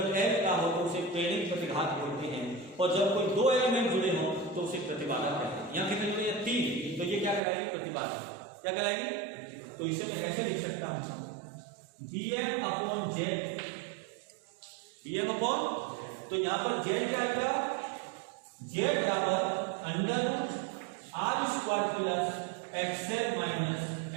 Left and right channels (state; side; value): drops out; left; at 7.4 s